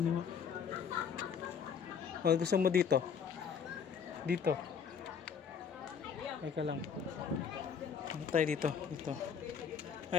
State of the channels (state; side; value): quieter; right; 6.8 dB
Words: O, gusto mo dito? Dito. Ay ka lang. Ano tayo dito? Dito. Ah,